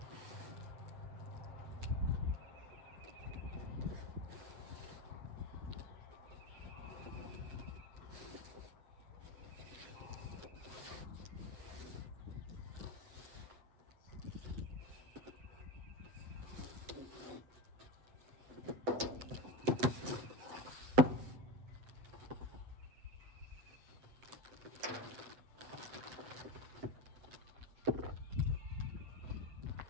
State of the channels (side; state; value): left; late; 8.1 ms